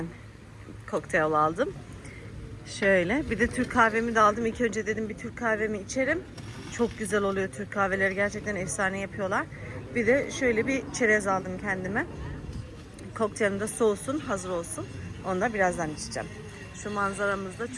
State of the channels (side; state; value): both; identical; correlation 1.00